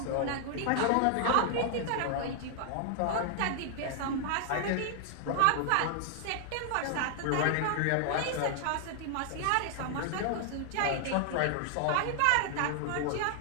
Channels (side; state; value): both; different; correlation 0.00